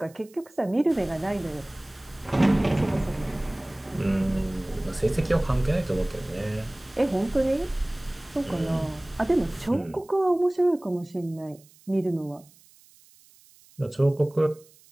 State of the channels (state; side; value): noise; right; hiss, 27 dB below the sound